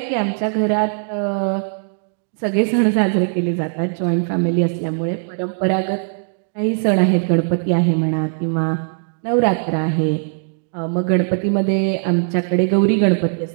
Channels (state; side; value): silent; left; digital silence